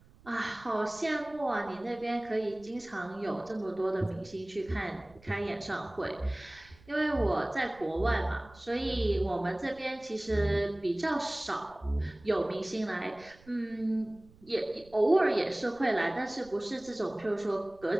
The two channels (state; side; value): noise; right; rumble, 25 dB below the sound